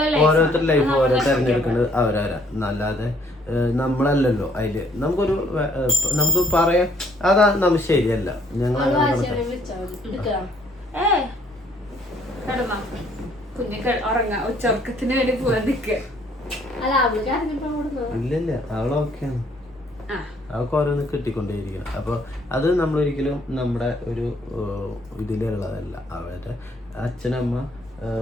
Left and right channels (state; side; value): normal; both; correlation 0.64